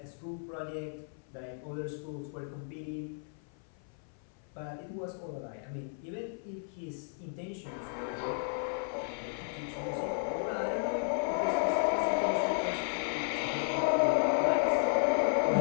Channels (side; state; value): right; silent; 55 dB below the other